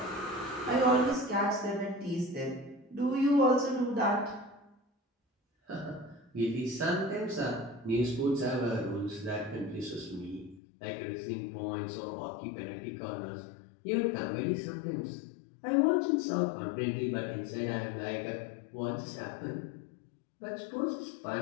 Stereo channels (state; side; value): drops out; right; at 10.6 s